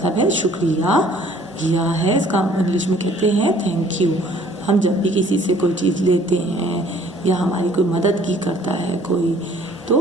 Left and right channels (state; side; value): normal; both; correlation 0.57